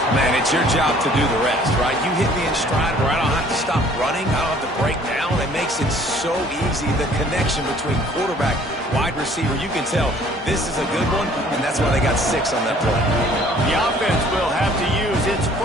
Man, it's your job to do the rest, right? You hit me in stride where I don't have to stop running. I don't have to break down. It makes it so easy. The connection between quarterback, wide receiver, you can tell this is a good one, and that's why they got 6 on that play. The offense will have to use its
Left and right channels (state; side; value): normal; both; correlation 0.56